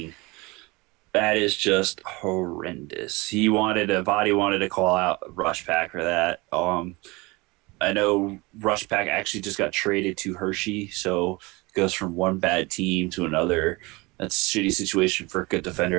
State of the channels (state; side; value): quieter; left; 24.2 dB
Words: That is just horrendous. Vatty wanted to call out Rush Pack for that. I know Rush Pack actually just got traded to Hershey, so it goes from one bad team to another. That's a shitty situation for a good